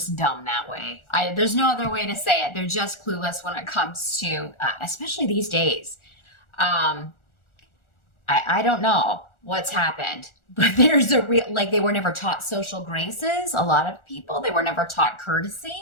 dumb that way. There's no other way to say it. They're just clueless when it comes to, especially these days. I don't know. what's happened. But there's a real, like, they were never taught social graces. A lot of people, they were never taught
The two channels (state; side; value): late; right; 1.4 ms